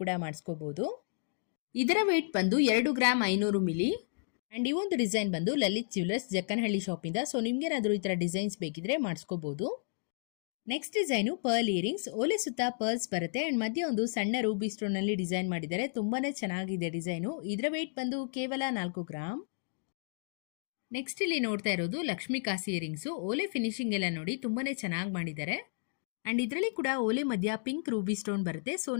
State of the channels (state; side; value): silent; right; digital silence